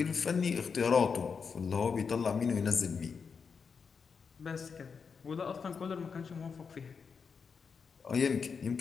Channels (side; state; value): right; quieter; 5.8 dB